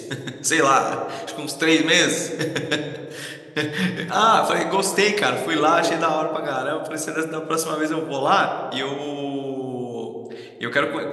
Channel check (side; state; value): both; identical; correlation 1.00